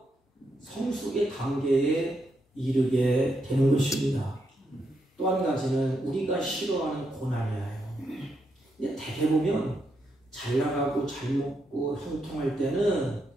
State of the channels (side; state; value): both; normal; correlation 0.81